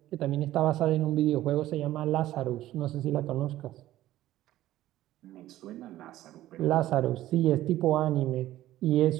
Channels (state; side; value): quieter; left; 14.5 dB